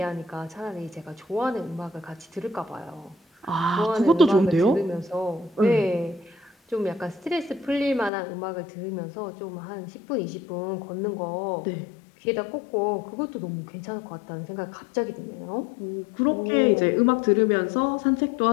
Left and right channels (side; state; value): right; drops out; at 8.1 s